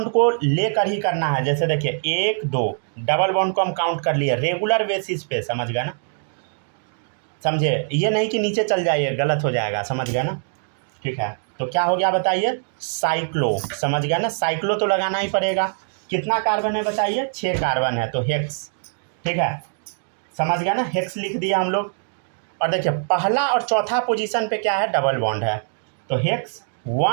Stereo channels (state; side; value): silent; left; 64 dB below the other